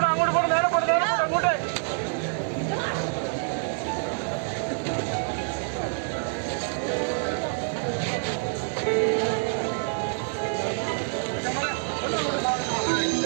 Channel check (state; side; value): silent; left; 58 dB below the other